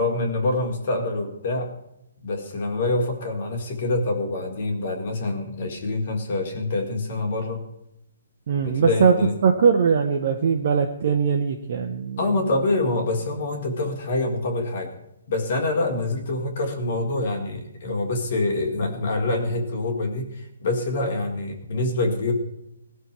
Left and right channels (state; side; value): inverted; both; correlation -0.58